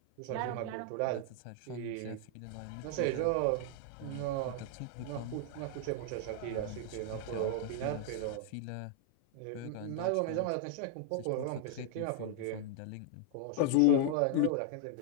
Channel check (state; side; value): different; both; correlation 0.00